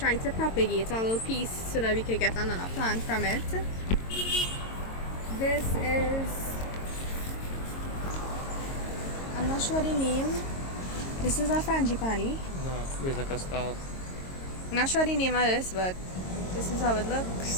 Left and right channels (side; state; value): right; late; 22 ms